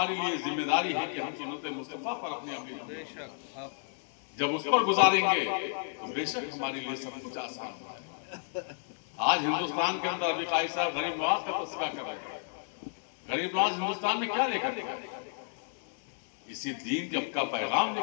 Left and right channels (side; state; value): right; silent; digital silence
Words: لیے ذمہ داری ہے کہ ہم سنت مصطفیٰ پر اپنے عمل جب اس پر گزاریں گے تو بے شک ہمارے لیے سب کچھ آسان ہو جائے. آج ہندوستان کے اندر ابھی قائد صاحب غریب نواز کا تذکرہ کر رہے ہیں. غریب نواز ہندوستان میں کیا لے کر گئے؟ اسی دین کا پیغام لے